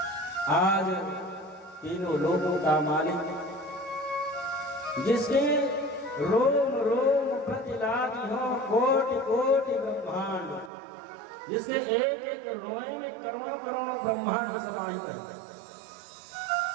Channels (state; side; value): drops out; left; at 10.7 s